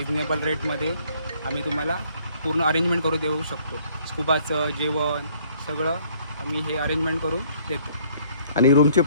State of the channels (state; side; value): inverted; both; correlation -0.62